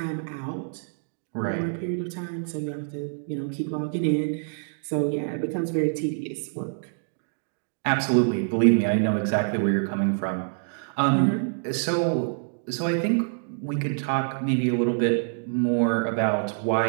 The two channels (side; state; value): left; silent; digital silence